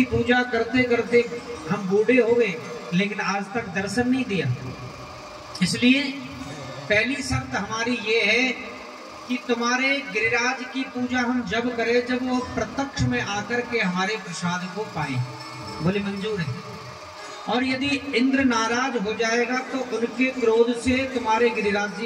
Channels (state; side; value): identical; both; correlation 1.00